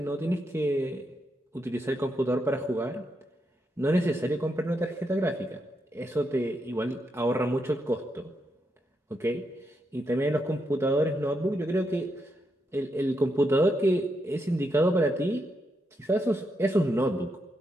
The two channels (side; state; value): both; normal; correlation 0.82